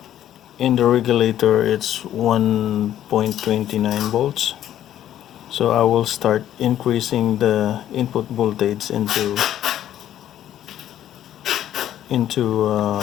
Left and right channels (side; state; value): right; quieter; 11.6 dB